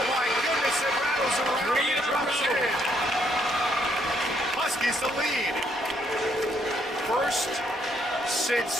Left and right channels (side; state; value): both; normal; correlation 0.71